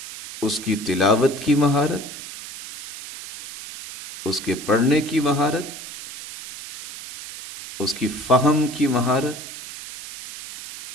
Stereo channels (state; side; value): noise; right; hiss, 12 dB below the sound